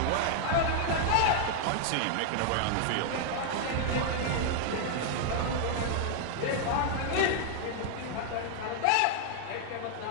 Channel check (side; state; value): both; different; correlation 0.00